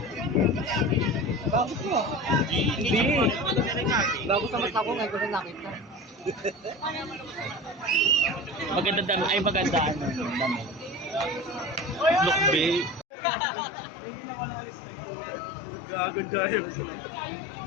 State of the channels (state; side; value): drops out; right; at 13.1 s